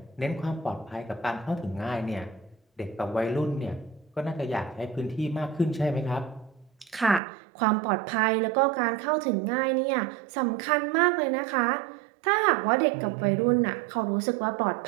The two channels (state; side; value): drops out; left; at 7.2 s